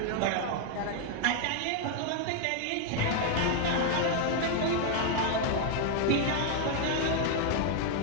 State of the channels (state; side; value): different; both; correlation 0.01